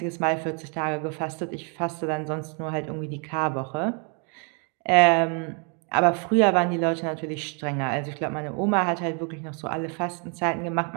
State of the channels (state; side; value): quieter; left; 37.1 dB